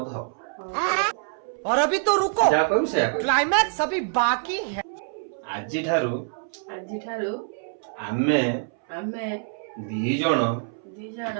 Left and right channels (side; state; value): left; silent; 61 dB below the other